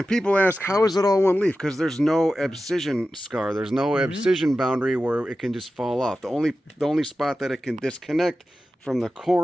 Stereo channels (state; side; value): normal; both; correlation 0.93